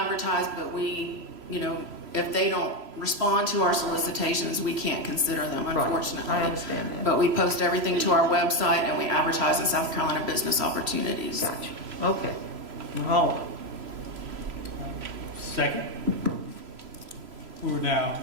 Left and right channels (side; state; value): left; late; 3.0 ms